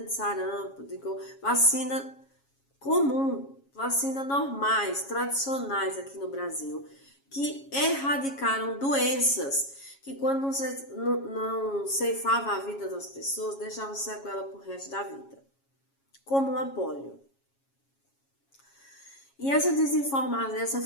de sarampo, vacina comum, vacina normais, tradicionais aqui no Brasil, que erradicaram doenças que quando não ceifava a vida das pessoas, deixava sequela pro resto da vida, como a polio. E essa desinformação,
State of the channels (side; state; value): right; late; 7.3 ms